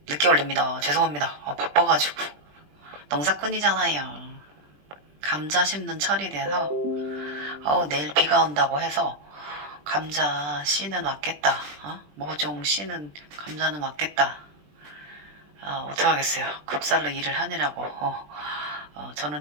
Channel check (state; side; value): late; left; 20 ms